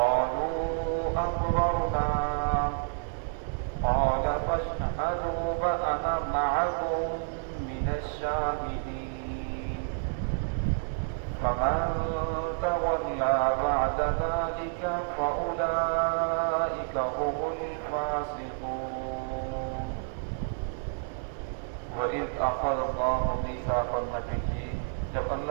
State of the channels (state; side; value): silent; left; digital silence